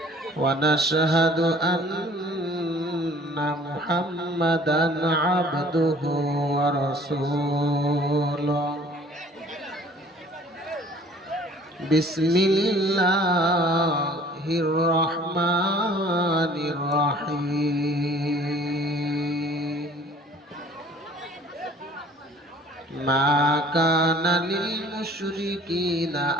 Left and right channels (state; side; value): normal; both; correlation 0.52